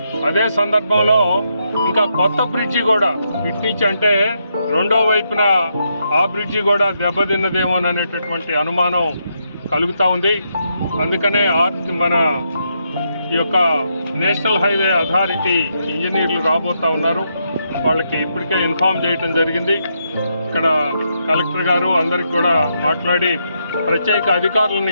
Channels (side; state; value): both; inverted; correlation -0.80